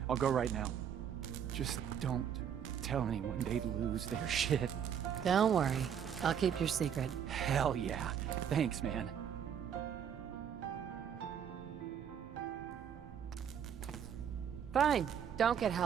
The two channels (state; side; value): quieter; left; 8.4 dB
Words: I'll go right now. Just don't tell anyone they'd lose their shit. Don't worry. I'll keep your secret. Hell yeah. Thanks, man. Fine. Don't get